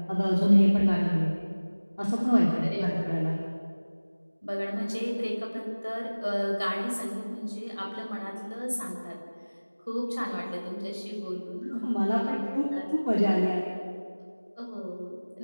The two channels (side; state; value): both; inverted; correlation -1.00